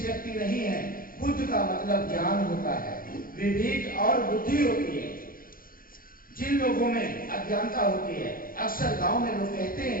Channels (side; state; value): right; late; 0.41 ms